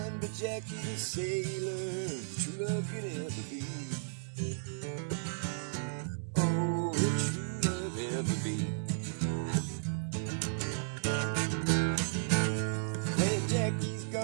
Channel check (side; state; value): left; silent; digital silence